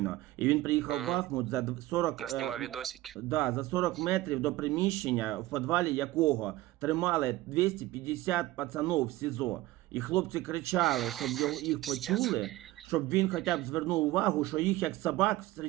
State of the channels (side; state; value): left; quieter; 17.3 dB